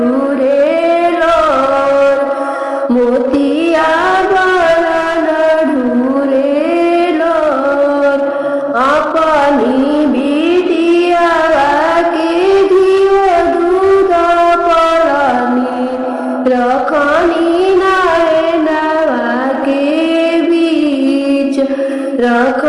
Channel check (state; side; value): identical; both; correlation 1.00